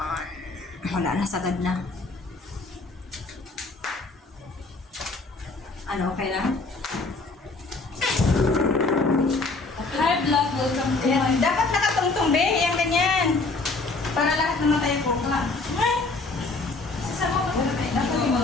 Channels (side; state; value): right; quieter; 3.6 dB